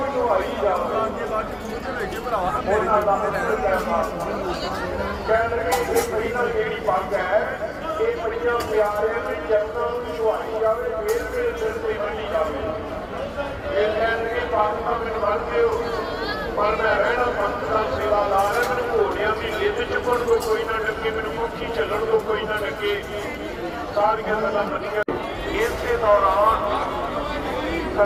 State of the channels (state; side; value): identical; both; correlation 1.00